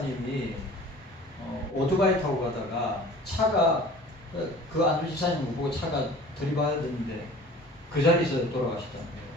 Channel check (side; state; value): both; normal; correlation 0.44